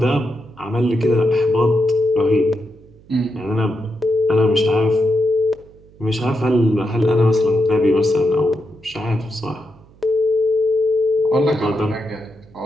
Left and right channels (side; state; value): right; noise; hum, 26 dB below the sound